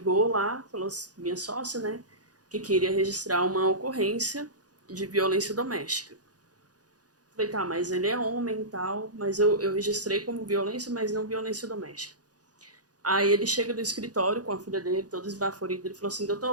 lá, falou, minha sócia, né, que queria registrar uma ocorrência de violência doméstica. Falei, tá, mas ele é homem e tal, mas eu registrei como violência, mas não violência doméstica. Aí ele chega do escritório com a filha dele, todo esbaforido, ele falou assim,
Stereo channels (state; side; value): late; left; 0.68 ms